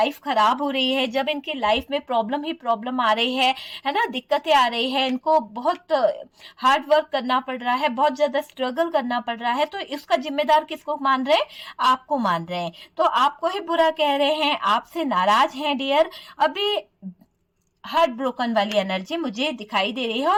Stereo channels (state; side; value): identical; both; correlation 1.00